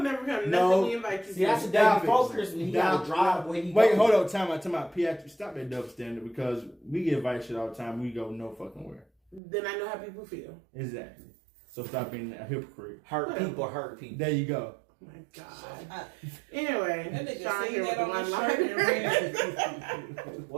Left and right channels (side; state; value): left; drops out; at 9.4 s